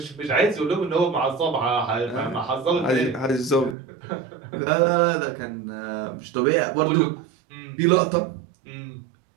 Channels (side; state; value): left; drops out; at 3.8 s